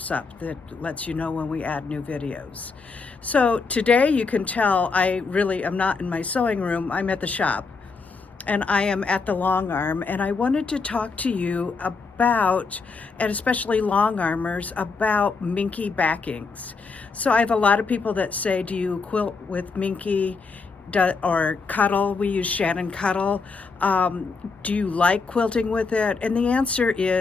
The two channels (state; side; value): quieter; right; 4.5 dB